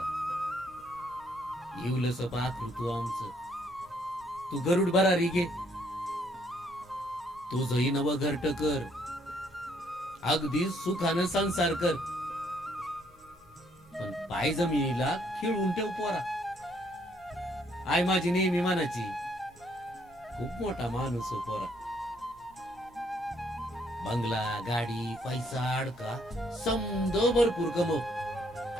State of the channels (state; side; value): normal; both; correlation 0.68